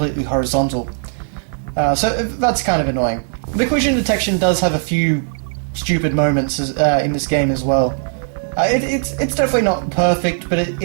horizontal. So that's kind of annoying. The collision detection does have a few stupid moments in this game as well. It's definitely not perfect, but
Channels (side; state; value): left; silent; digital silence